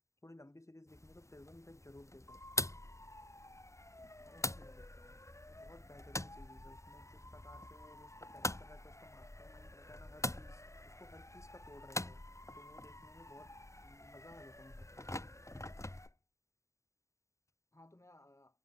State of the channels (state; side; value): late; right; 0.14 ms